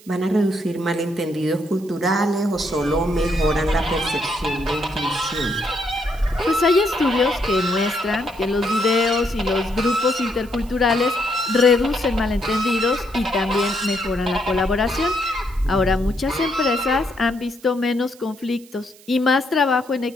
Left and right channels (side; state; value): right; noise; hiss, 24 dB below the sound